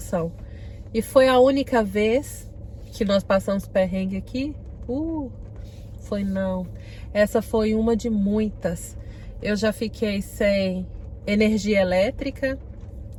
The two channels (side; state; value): both; identical; correlation 1.00